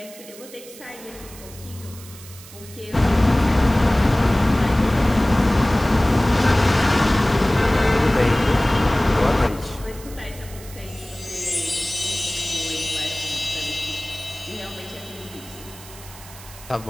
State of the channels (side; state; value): right; noise; hiss, 18 dB below the sound